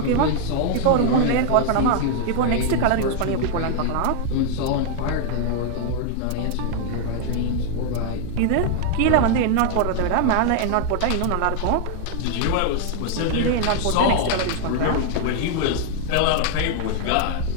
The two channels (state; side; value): different; both; correlation 0.00